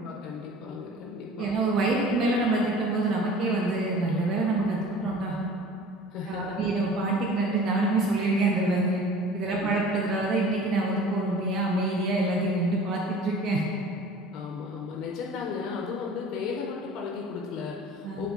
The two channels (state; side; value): normal; both; correlation 0.44